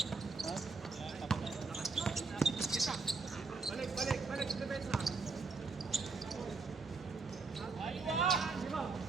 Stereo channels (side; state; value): left; quieter; 4.2 dB